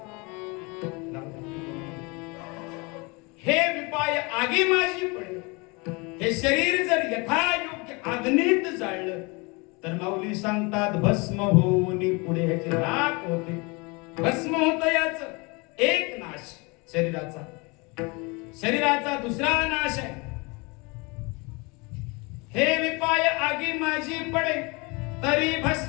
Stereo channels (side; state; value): right; quieter; 27.9 dB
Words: हे विपाय आगी माझी पडे, हे शरीर जर यथायोग्य अग्नीत जाळलं तर माऊली सांगतात भस्म होऊन पुढे ह्याचे राख होते, भस्म होत. याच एक नाश शरीराचा. शरीराचा दुसरा नाश आहे. हे विपाय आगी माझी पडे तरी